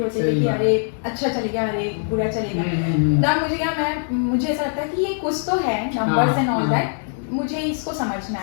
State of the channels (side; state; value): right; silent; digital silence